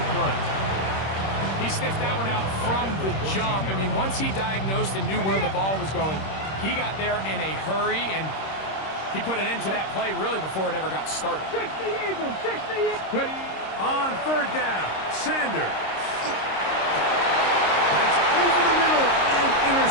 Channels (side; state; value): right; late; 26 ms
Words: play. He sniffed that one out from the jump. I mean, once he diagnosed and knew where the ball was going, he got there in a hurry, and he put an end to that play really before it ever got started. 60 Eagles, 60 Eagles. Ready. On third down, Sanders. That's over the middle and